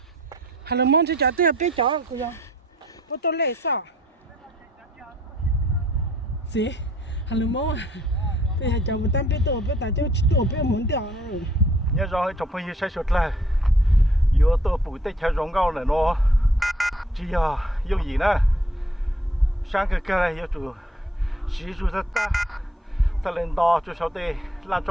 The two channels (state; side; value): normal; both; correlation 0.62